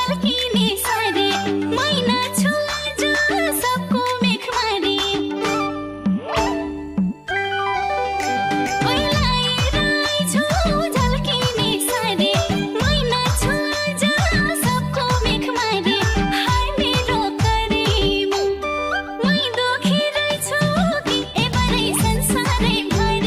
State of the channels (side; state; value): both; identical; correlation 1.00